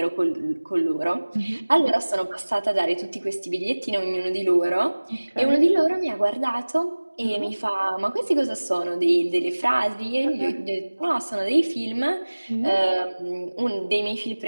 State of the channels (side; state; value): both; inverted; correlation -1.00